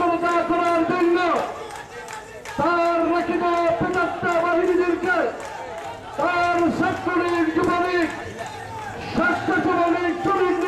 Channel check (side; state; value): both; identical; correlation 1.00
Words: করার জন্য তার রচিত পেটাত্তা বাহিনীদেরকে, তার ছাত্রলীগ, যুবলীগ, স্বেচ্ছাসেবক শ্রমিক